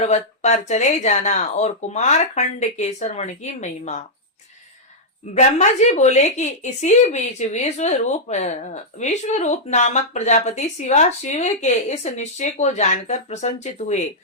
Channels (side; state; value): both; normal; correlation -0.08